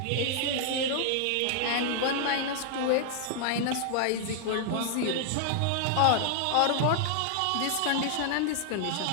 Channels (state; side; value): different; both; correlation -0.01